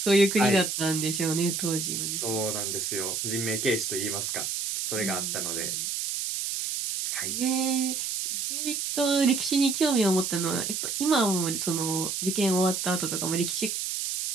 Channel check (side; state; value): right; noise; hiss, 2 dB below the sound